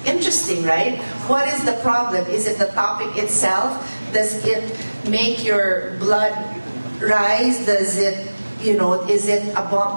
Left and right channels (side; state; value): both; inverted; correlation -1.00